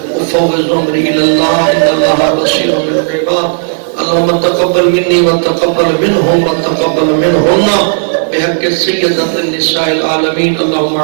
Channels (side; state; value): left; silent; digital silence